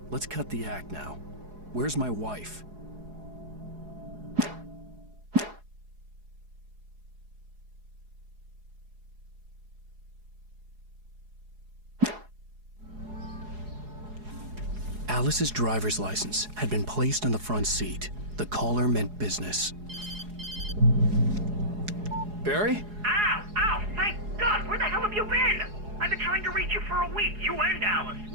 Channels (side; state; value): left; late; 4.8 ms